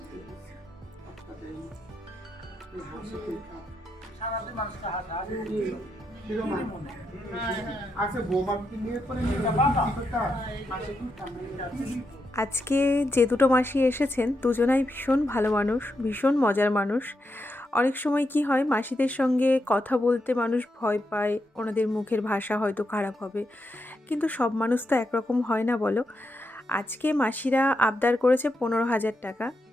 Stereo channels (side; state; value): both; normal; correlation 0.83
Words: আপনাদের এই হাসি খেতাম সারাদিন মানুষটা হাসা আচ্ছা বৌমা কি নিয়ে করে আজকে যে দুটো মাসি এসেছেন দুজনাই ভীষণ ভালো মানুষ ভীষণ মজার মানুষ অনেক সময় কি হয় মাসিদের সঙ্গে কথা বলতে মানুষ ভয় পায় ওনাদের মুখের ভাষা হয়তো খারাপ হবে কিন্তু সব মানুষ তো একরকম হয় না বলো আজকে মাসিরা আবদার করেছে 15,000 টাকা